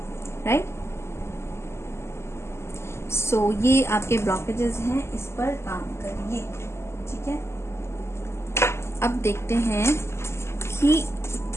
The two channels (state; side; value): late; right; 0.13 ms